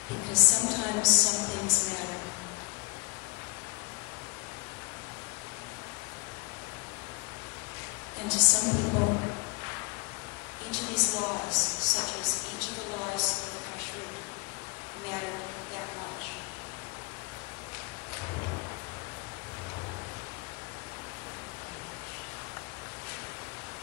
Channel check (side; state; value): right; quieter; 30.4 dB